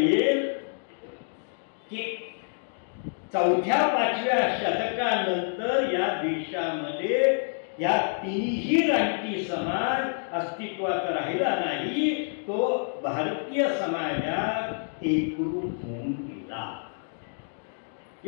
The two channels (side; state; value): right; silent; digital silence